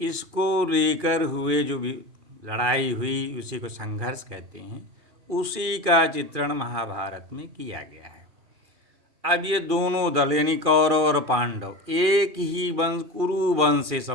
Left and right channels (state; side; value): late; left; 2.4 ms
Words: लेकर हुए जो भी लड़ाई हुई उसी को संघर्ष कहते हैं। उसी का चित्रण महाभारत में किया गया है। अब ये दोनों दल यानी कौरव और पांडव एक ही वंश, कुरु वंश से